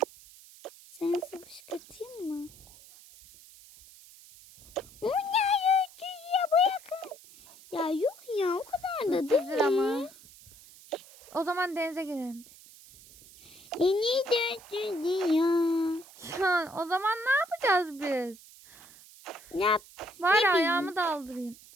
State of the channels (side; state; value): right; noise; hiss, 21 dB below the sound